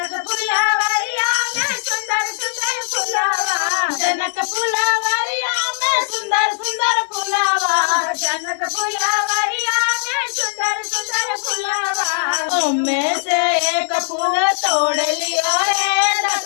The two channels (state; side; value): silent; right; 64 dB below the other